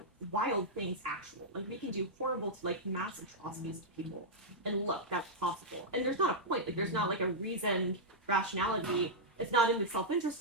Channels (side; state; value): both; normal; correlation -0.08